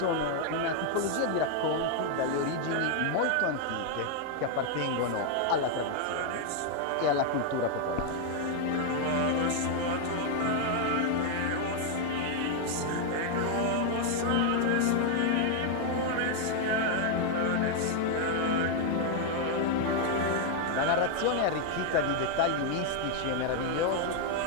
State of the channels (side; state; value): both; different; correlation 0.00